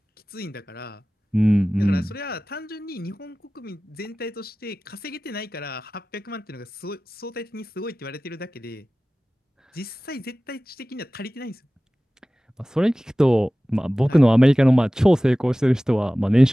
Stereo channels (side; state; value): both; normal; correlation 0.97